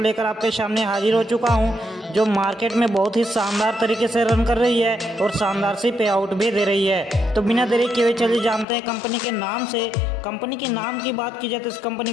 आपके सामने हाजिर हो चुका हूं, जो मार्केट में बहुत ही शानदार तरीके से रन कर रही है और शानदार सी पे आउट भी दे रही है। तो बिना देरी किए हुए चलिए जानते हैं कंपनी के नाम से। कंपनी के नाम की बात की जाए तो इस कंपनी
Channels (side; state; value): right; drops out; at 8.7 s